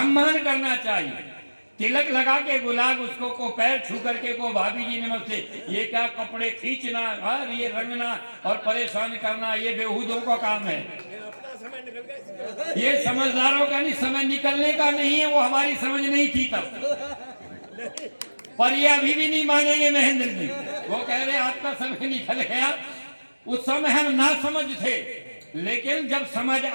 करना चाहिए। तिलक लगा के गुलाब उसको को पैर छू करके को भाभी जी नमस्ते, ये क्या कपड़े खींचना और ये रंगना और परेशान करना, ये बेहूदों का काम है। ये समझदारों का नहीं, समय निकलने का नहीं है। वो हमारी समझ नहीं थी तब, पर ये अभी भी नहीं मानेंगे महेंद्र जी। वो कह रहे आपका समय निकल गया। उस समय हम ना समझ थे, लेकिन जब समझ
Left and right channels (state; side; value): inverted; both; correlation -1.00